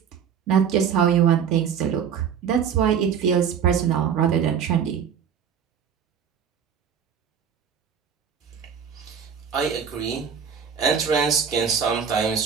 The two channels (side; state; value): left; quieter; 7.5 dB